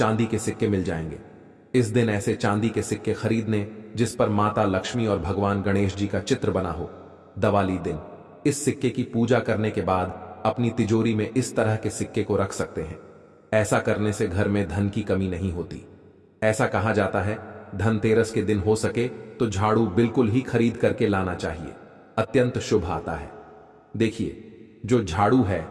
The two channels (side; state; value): both; identical; correlation 1.00